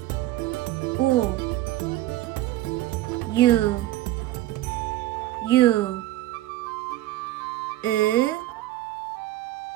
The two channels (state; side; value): quieter; left; 15.4 dB